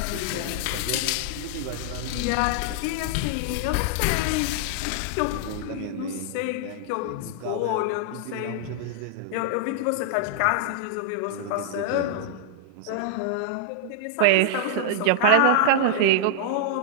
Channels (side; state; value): both; different; correlation -0.01